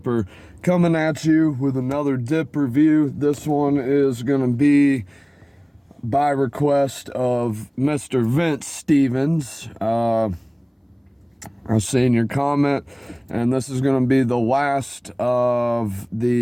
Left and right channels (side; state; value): both; identical; correlation 1.00